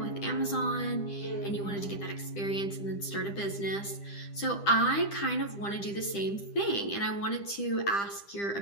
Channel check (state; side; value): late; right; 10 ms